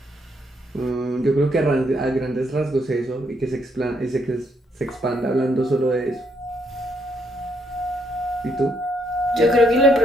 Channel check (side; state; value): both; normal; correlation 0.73